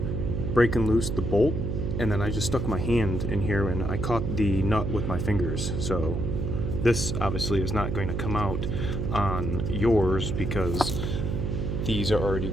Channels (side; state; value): right; noise; hum, 1 dB below the sound